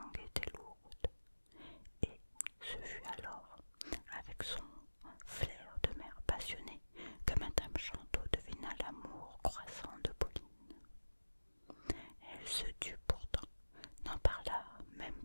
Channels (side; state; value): both; inverted; correlation -1.00